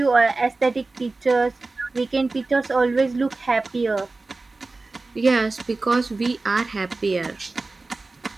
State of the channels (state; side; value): quieter; left; 3.5 dB